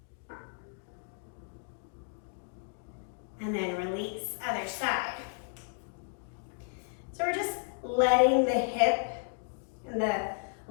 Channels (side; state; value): right; silent; 56 dB below the other